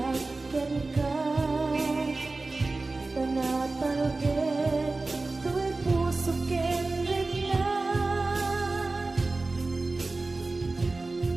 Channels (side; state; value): left; quieter; 3.4 dB